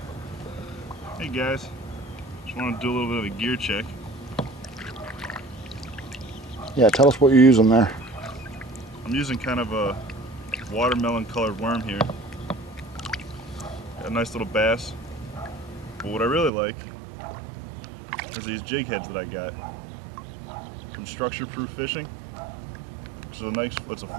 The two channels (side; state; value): left; drops out; at 16.5 s